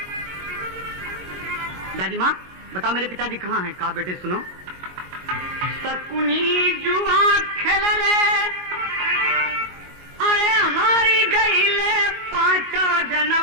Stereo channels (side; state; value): left; late; 22 ms